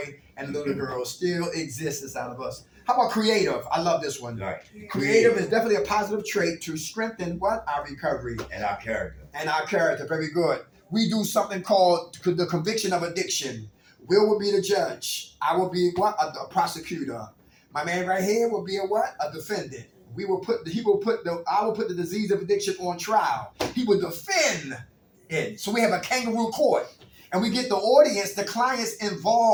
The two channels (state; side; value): identical; both; correlation 1.00